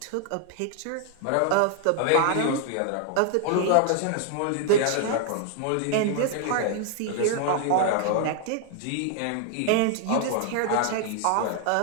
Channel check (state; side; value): different; both; correlation 0.00